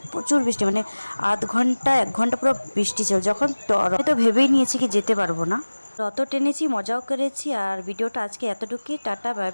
প্রচুর বৃষ্টি, মানে আধ ঘন্টা 1 ঘন্টা পুরো বৃষ্টি ছিল। যখন তো ভেবেই নিয়েছি কি যেতে পারবো না। রথ টেনেছি, মজাও করেছি। আর ভিডিওটা আজকে এতটুকুই। টাটা, বাই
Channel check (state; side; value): inverted; both; correlation -1.00